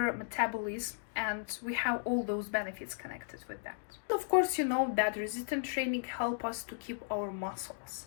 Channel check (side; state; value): right; silent; digital silence